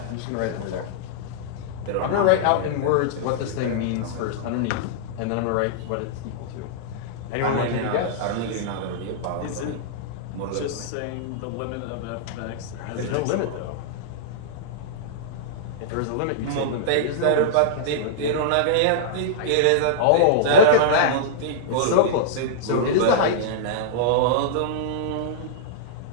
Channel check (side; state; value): both; different; correlation -0.02